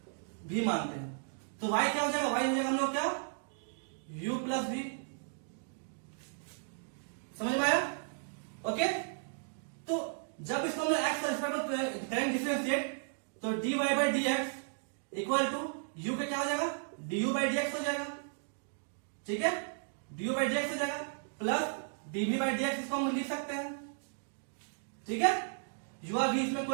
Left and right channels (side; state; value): left; silent; digital silence